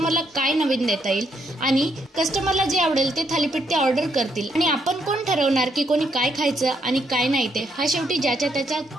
काय नवीन देता येईल आणि कस्टमरला जे आवडेल ते थालीपीठ ते ऑर्डर करतील आणि आपण कोण ठरवणार की कोणी काय खायचं आणि काय नाही ते हा शेवटी ज्याच्या त्याचा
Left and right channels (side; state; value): both; normal; correlation 0.75